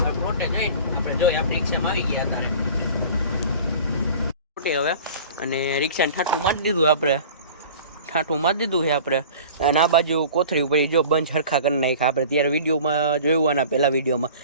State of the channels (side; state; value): both; inverted; correlation -0.42